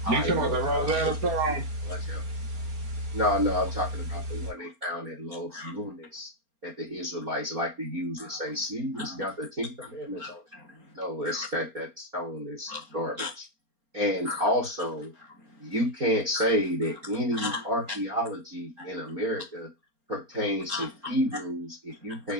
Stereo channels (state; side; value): late; left; 4.3 ms